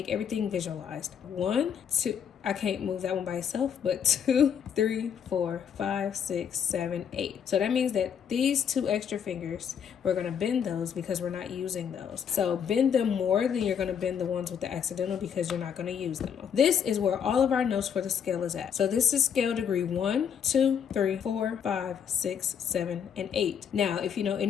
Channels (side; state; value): right; quieter; 7.9 dB